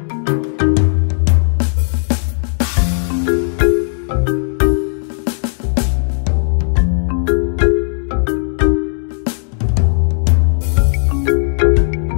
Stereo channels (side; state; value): right; silent; digital silence